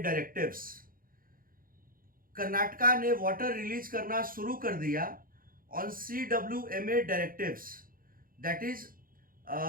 directives. Karnataka ने water release करना शुरू कर दिया on CWMA directives. That is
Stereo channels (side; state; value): left; late; 0.41 ms